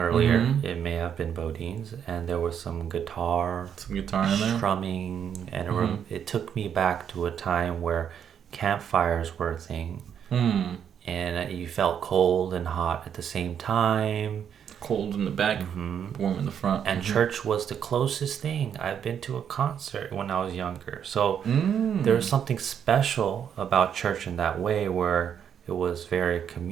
earlier. Mm-hmm. It may have been Bodines, and there was some guitar in there, strumming, and it took me back to a time where campfires were a thing, and you felt cold and hot at the same time. Cold in the back, warm in the front. And church was the closest thing. I've been to a concert when I was younger. So there's something special about church in that way, where it was very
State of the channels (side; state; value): left; quieter; 8.4 dB